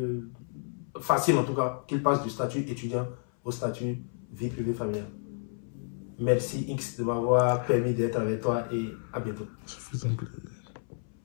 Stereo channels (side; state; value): right; silent; 57 dB below the other